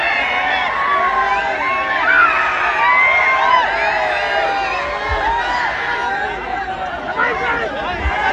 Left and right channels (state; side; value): identical; both; correlation 1.00